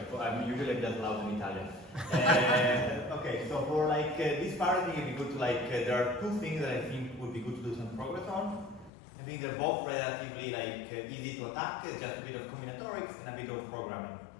I'm usually just loud in Italian. Okay, so for like this part, I think it'd be good to like there are two things that I think would be good to do some progress on. I think they're both relatively like easy to attack, just a bit of combinatorics and a bit of programming.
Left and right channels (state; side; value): drops out; right; at 8.9 s